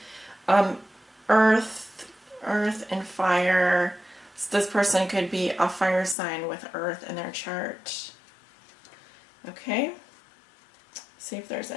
Earth and fire. So this person could be a fire sign with earth in their chart. Okay. See if there's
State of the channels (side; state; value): right; drops out; at 6.2 s